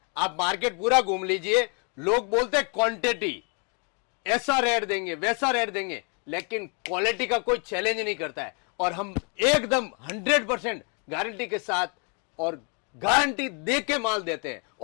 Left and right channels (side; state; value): right; quieter; 37.0 dB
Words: आप मार्केट पूरा घूम लीजिए, लोग बोलते हैं क्वांटिटी, ऐसा रेट देंगे वैसा रेट देंगे, लेकिन क्वालिटी का कोई चैलेंज नहीं करता है। और हम एकदम 100% गारंटी के साथ और गारंटी दे के माल देते हैं